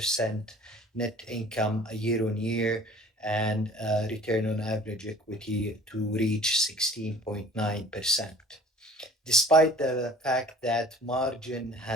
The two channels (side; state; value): both; normal; correlation 0.48